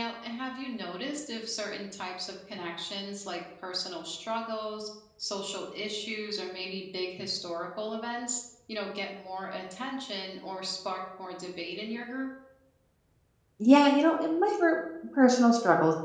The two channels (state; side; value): identical; both; correlation 1.00